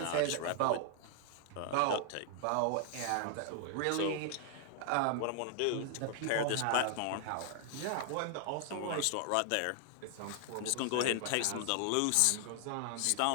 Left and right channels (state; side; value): different; both; correlation 0.00